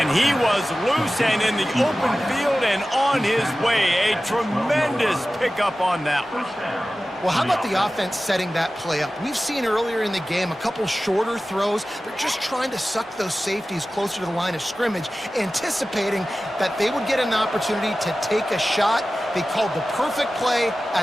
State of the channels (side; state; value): both; normal; correlation 0.95